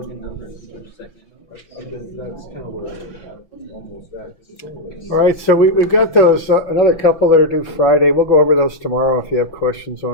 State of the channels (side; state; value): right; late; 6.0 ms